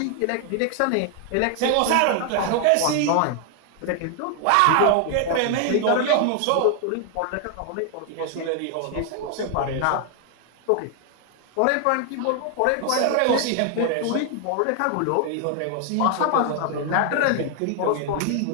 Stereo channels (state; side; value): different; both; correlation 0.00